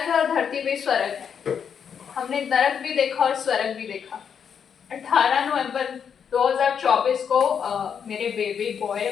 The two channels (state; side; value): quieter; right; 7.4 dB